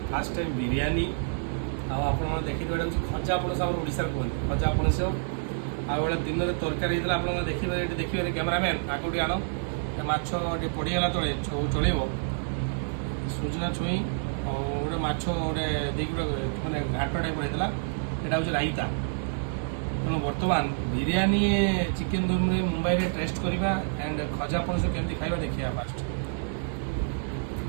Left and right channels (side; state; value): left; silent; digital silence